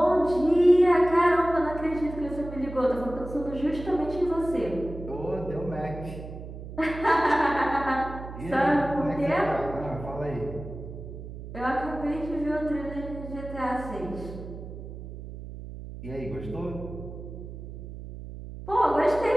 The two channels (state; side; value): noise; right; hum, 11 dB below the sound